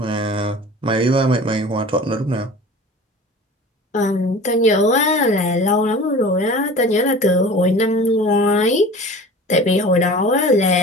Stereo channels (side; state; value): both; normal; correlation 0.39